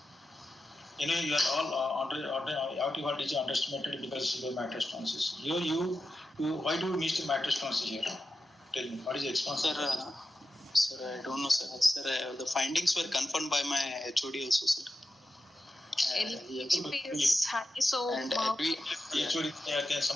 You know, you are all aortic voltage underestimated because of severe mitral stenosis. Why do you miss the mitral stenosis here? Tell me, what is the expansion? Sir, I don't know, sir. Sir, the findings were confirmed by my HOD also, sir. LVP is high, so And HOD,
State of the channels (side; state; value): both; normal; correlation 0.90